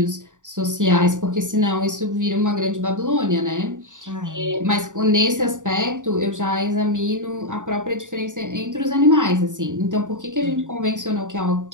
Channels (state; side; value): late; left; 0.87 ms